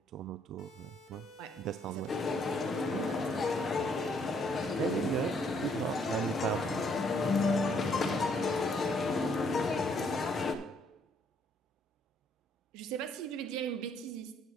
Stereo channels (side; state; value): both; normal; correlation 0.68